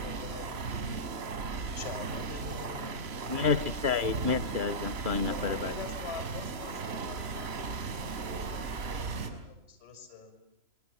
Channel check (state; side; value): late; left; 3.0 ms